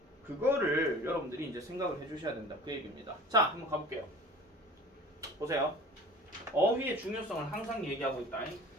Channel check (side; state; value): both; normal; correlation 0.42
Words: 그거를 여러분들이 이제 생각을 해주셔야 된다. 그 얘기입니다. 자, 한번 가볼게요. 보세요. 어휘의 중요성을 항상 얘기하고 있다.